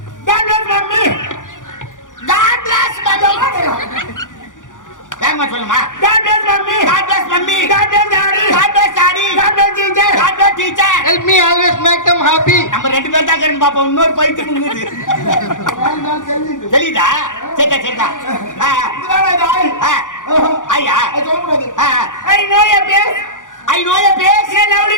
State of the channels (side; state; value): right; late; 0.87 ms